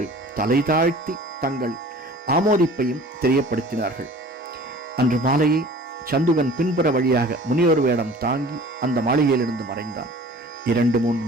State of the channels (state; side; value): normal; both; correlation 0.45